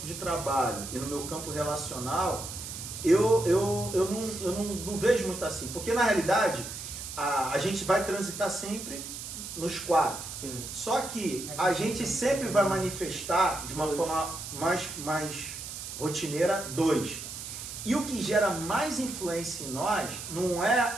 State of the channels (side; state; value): right; noise; hiss, 9 dB below the sound